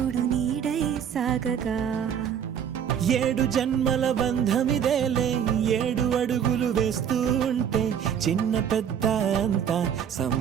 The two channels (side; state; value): left; quieter; 8.5 dB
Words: నీడై సాగగా 7 జన్మల బంధమిదేలే 7 అడుగులు వేస్తూ ఉంటే చిన్న పెద్ద అంతా